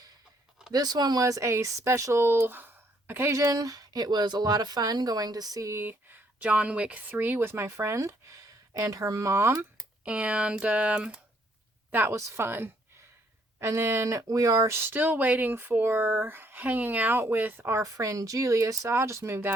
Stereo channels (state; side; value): normal; both; correlation 0.68